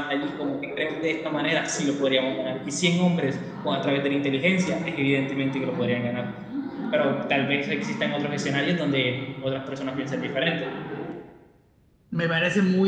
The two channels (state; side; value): identical; both; correlation 1.00